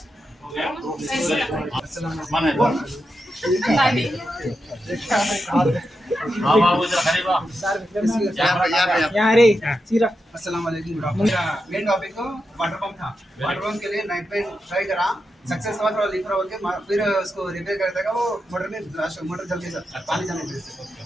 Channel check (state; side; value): normal; both; correlation 0.87